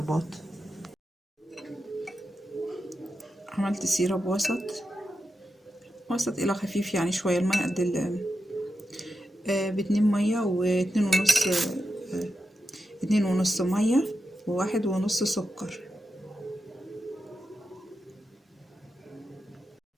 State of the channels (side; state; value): both; normal; correlation 0.88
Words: عملت سيرب وسط الى خفيف، يعني شويه الميه قد باتنين ميه واتنين ونص، اتنين ونص ميه وواحد ونص سكر.